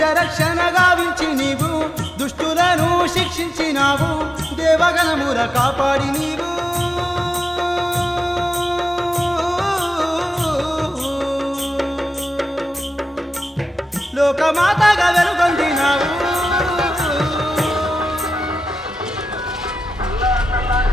రక్షణ గావించి నీవు దుష్టులను శిక్షించినావు దేవగణముల కాపాడి నీవు లోకమాతగా వెలుగొందినావు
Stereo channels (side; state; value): both; normal; correlation 0.92